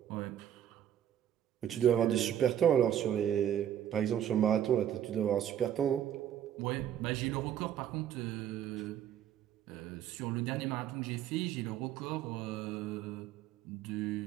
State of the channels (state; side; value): quieter; left; 10.4 dB